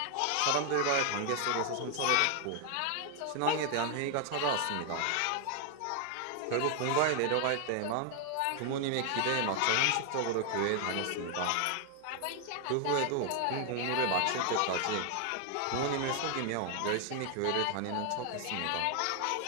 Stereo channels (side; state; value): both; different; correlation 0.00